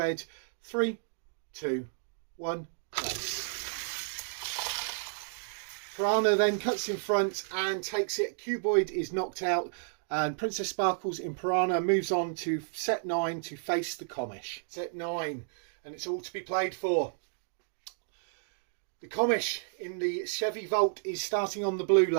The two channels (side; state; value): left; silent; digital silence